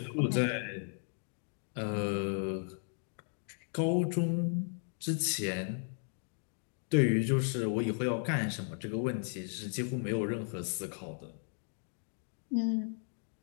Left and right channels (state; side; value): silent; right; 54 dB below the other